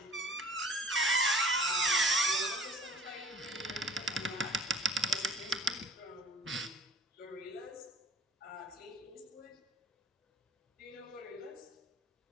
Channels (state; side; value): normal; both; correlation 0.48